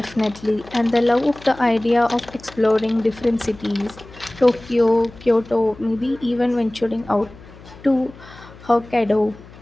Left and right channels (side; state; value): left; noise; hum, 20 dB below the sound